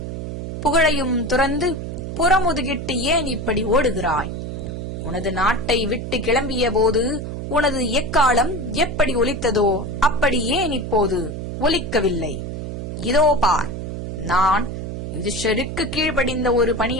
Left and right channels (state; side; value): noise; right; hum, 6 dB below the sound